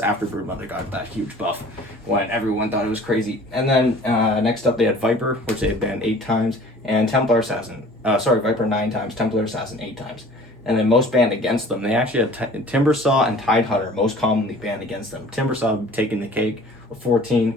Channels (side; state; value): both; normal; correlation 0.48